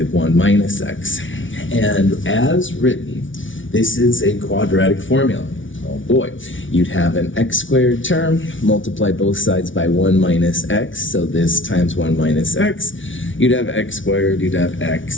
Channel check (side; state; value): right; late; 0.56 ms